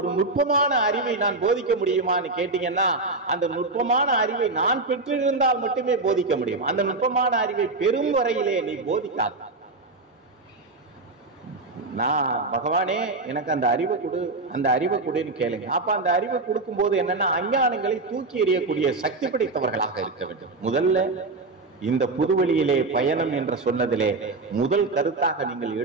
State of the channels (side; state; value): left; quieter; 3.4 dB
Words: நுட்பமான அறிவை நான் போதிக்க முடியுமான்னு கேட்டீங்கன்னா, அந்த நுட்பமான அறிவை நான் பெற்றிருந்தால் மட்டுமே போதிக்க முடியும். அந்த நுட்பமான அறிவை பெரும் வரையிலே நீ போதிக்காத. நான் பகவானே எனக்கு அந்த அறிவை கொடு, அந்த அறிவை கொடுன்னு கேளுங்க. அப்ப அந்த அறிவை கொடுக்கும் போது என்னன்னா, அஞ்ஞானங்களை தூக்கி எறியக்கூடிய சக்தி படைத்தவர்களாக இருக்க வேண்டும். முதல்ல இந்த புதுவெளியிலே பயணம் என்று சொன்னதிலே முதல் கருத்தாக நீங்கள்